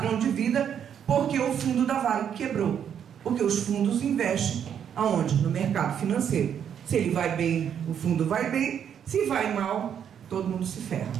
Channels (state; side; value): quieter; left; 8.6 dB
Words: de vida, porque o fundo da Varig quebrou. Porque os fundos investem aonde? No mercado financeiro. Se ele vai bem, o fundo vai bem. Se vai mal, todo mundo se ferra,